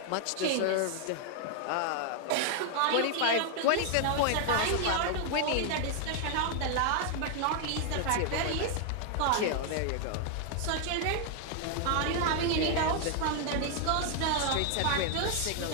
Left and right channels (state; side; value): different; both; correlation 0.00